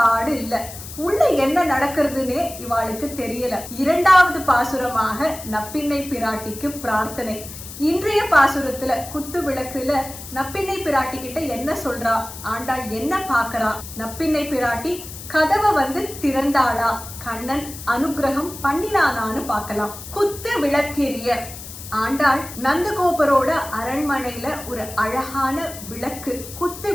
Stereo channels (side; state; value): left; noise; hiss, 13 dB below the sound